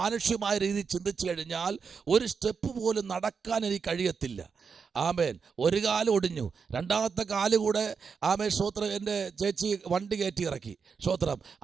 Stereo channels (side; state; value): left; quieter; 5.8 dB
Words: രീതിയിൽ ചിന്തിച്ചു കഴിഞ്ഞാൽ ഒരു സ്റ്റെപ്പ് പോലും നടക്കാൻ എനിക്ക് കഴിയത്തില്ല. ആമേൻ. ഒരു കാല് ഒടിഞ്ഞു, രണ്ടാമത്തെ കാല് കൂടെ ആമേൻ സ്തോത്രം എൻ്റെ ചേച്ചി വണ്ടി കയറ്റി ഇറക്കി. സ്തോത്രം.